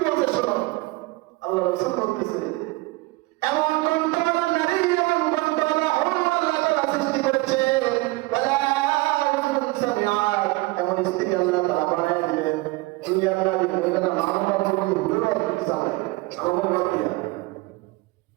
বলতে শোনো। আল্লাহ রাসূল বলতেছে এমন কণ্ঠওয়ালা নারী, এমন কণ্ঠওয়ালা হুর আল্লাহ তাআলা সৃষ্টি করেছে, এমন স্ত্রী আল্লাহ তাআলা বানায় দিবেন। দুনিয়ার নারী ওইখানে মা-বাবার মধ্যে ঘুরে বেড়াতে চাবে, আমার বাদ দিয়া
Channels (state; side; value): quieter; left; 22.2 dB